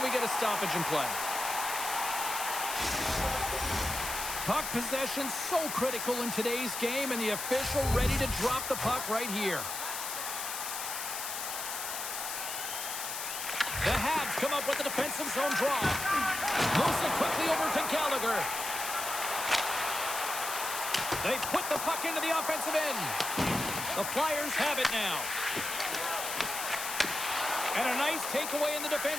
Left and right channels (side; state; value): left; noise; hiss, 4 dB below the sound